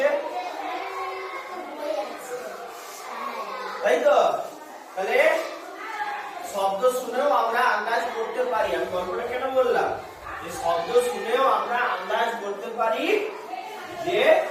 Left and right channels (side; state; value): both; identical; correlation 1.00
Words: তাই তো? তাহলে শব্দ শুনেও আমরা আন্দাজ করতে পারি, আমি গল্পটা কেন বললাম যে শব্দ শুনেও আমরা আন্দাজ করতে পারি যে